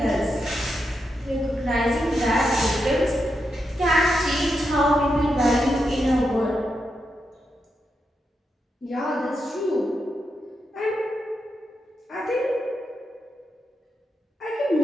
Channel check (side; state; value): both; normal; correlation 0.85